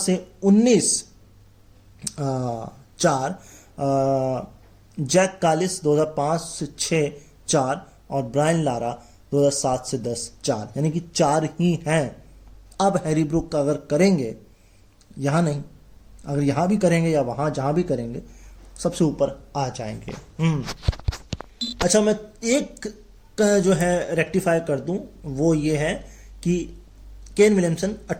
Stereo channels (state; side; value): identical; both; correlation 1.00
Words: 19 4, जैक कालिस 2005 से 6 4 और ब्रायन लारा 2007 से 10 4, यानी कि 4 ही हैं। अब हैरी ब्रुक अगर करेंगे, यहाँ नहीं, अगर यहाँ भी करेंगे या वहाँ जहाँ भी करेंगे सबसे ऊपर आ जाएंगे। अच्छा मैं एक जो है रेक्टिफाई कर दूं, वो ये है कि केन विलियमसन